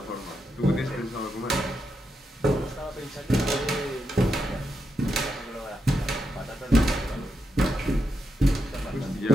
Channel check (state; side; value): normal; both; correlation 0.84